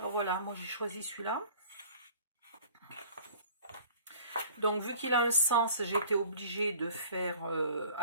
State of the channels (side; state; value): both; inverted; correlation -0.49